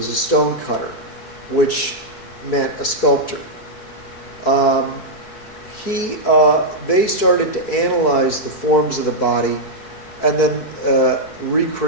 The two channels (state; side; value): late; right; 4.6 ms